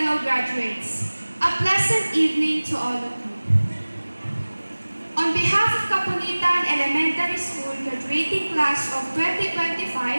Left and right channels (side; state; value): both; inverted; correlation -1.00